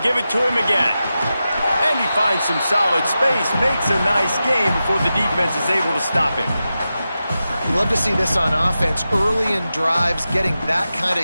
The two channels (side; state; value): both; inverted; correlation -0.92